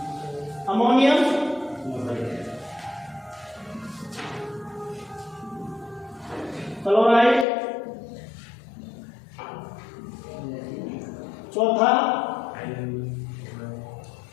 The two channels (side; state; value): right; drops out; at 7.5 s